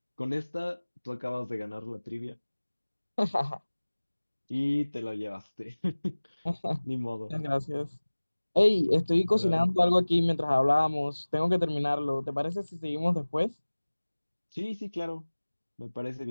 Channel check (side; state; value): both; inverted; correlation -1.00